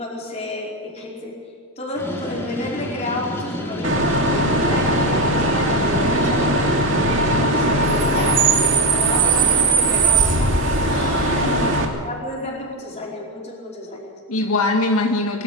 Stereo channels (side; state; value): both; normal; correlation 0.12